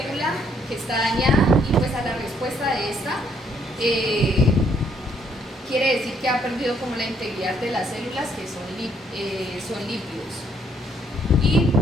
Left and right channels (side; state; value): both; normal; correlation 0.69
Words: que está dañada, y pues a la respuesta de esta quiere decir que ha perdido como la integridad de las células, que son lípidos. Y